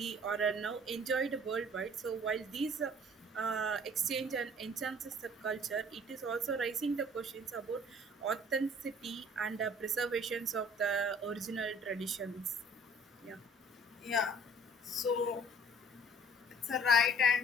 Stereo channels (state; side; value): normal; both; correlation 0.53